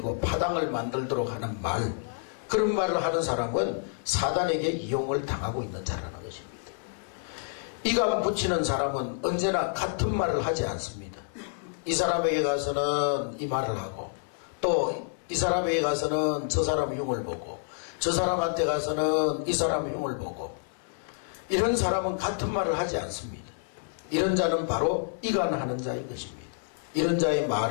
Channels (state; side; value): silent; right; digital silence